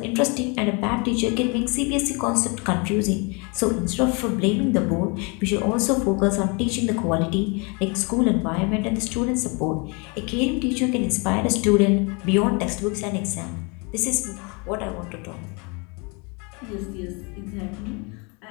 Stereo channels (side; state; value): right; quieter; 31.6 dB